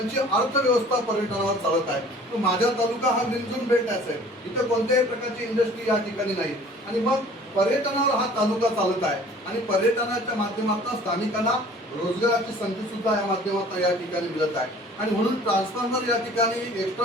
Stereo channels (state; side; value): normal; both; correlation 0.49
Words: अर्थव्यवस्था पर्यटनावर चालत आहे. तर माझा तालुका हा ग्रीन बेल्ट आहे, इथे कोणत्याही प्रकारची इंडस्ट्री या ठिकाणी नाही आणि मग पर्यटनावर हा तालुका चालत आहे आणि पर्यटनाच्या माध्यमातून स्थानिकांना रोजगाराची संधी सुद्धा या माध्यमातून या ठिकाणी मिळत आहे. आणि म्हणून ट्रान्सफॉर्मर या ठिकाणी